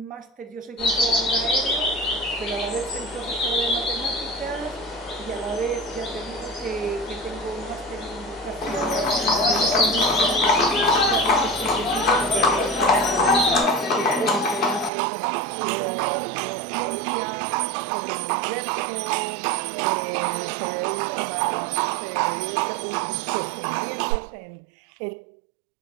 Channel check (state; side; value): drops out; left; at 14.9 s